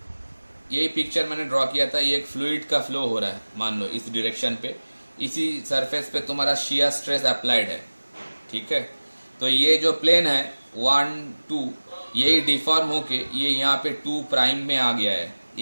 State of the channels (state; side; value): inverted; both; correlation -1.00